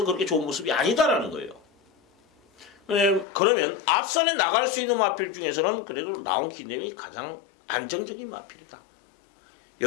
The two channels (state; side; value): drops out; right; at 3.2 s